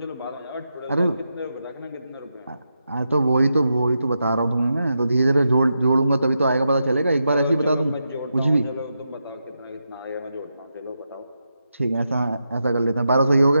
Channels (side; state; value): both; inverted; correlation -0.86